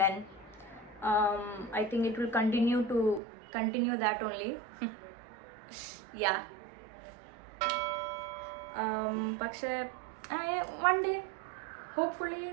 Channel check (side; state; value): left; drops out; at 3.2 s